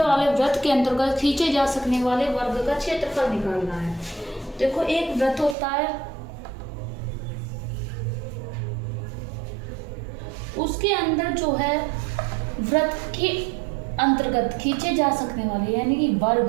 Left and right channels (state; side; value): drops out; left; at 5.6 s